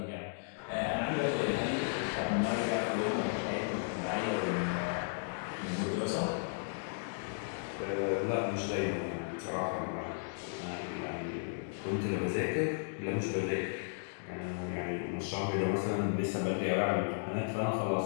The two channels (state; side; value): silent; right; digital silence